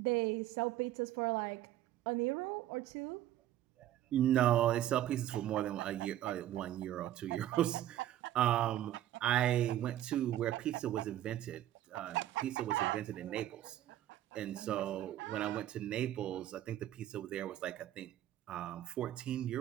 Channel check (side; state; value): left; quieter; 12.9 dB